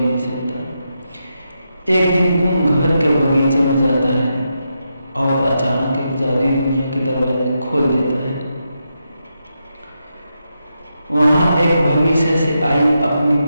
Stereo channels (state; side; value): inverted; both; correlation -0.85